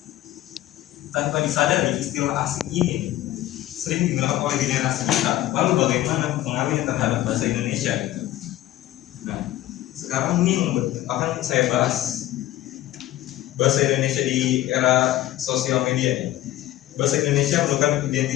tanpa disadari istilah asing ini sering digunakan oleh generasi kita. Lalu bagaimana pengaruhnya terhadap bahasa Indonesia? Gitu. Nah, sekarang ini yang akan saya bahas bahasa Indonesia di era sosial media. Bahasa Indonesia merupakan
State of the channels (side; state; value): right; quieter; 14.6 dB